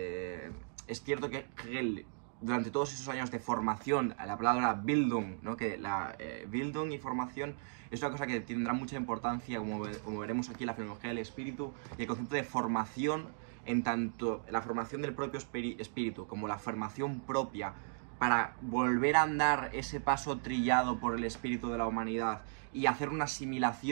cierto que Hegel, durante todos esos años de formación, la palabra Bildung, ¿no? Que Bildung y formación es una cosa que tendrá mucha importancia, como veremos aquí en la fenomenología del espíritu, y el concepto de formación, en tanto la formación del propio espíritu como la formación propia, para volver a andar ese paso trillado por el espíritu de la humanidad y hacer una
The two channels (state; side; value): silent; left; digital silence